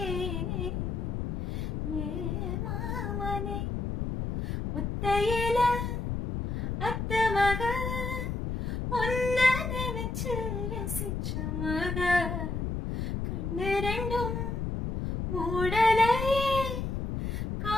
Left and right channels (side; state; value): left; noise; rumble, 2 dB below the sound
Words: ஏ மாமனே ஒத்தையில அத்த மக ஒன்ன நினைச்சு ரசிச்ச மக கண்ணு ரெண்டும் மூடலையே